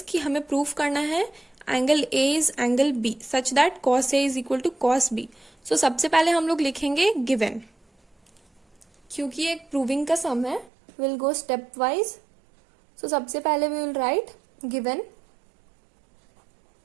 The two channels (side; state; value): left; drops out; at 10.7 s